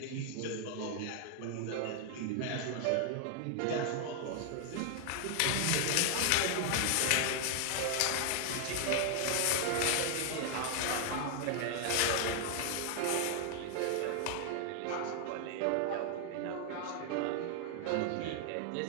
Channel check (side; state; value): both; different; correlation 0.00